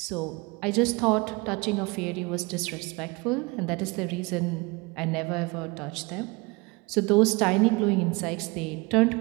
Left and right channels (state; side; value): quieter; left; 26.0 dB